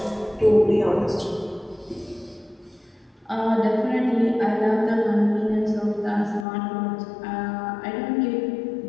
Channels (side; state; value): right; drops out; at 6.5 s